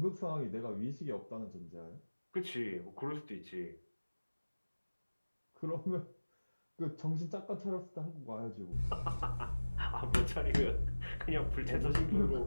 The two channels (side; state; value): both; inverted; correlation -1.00